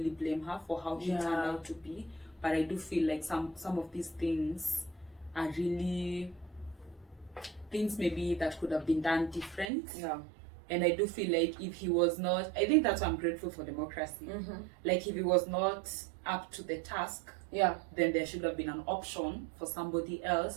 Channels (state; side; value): drops out; left; at 9.7 s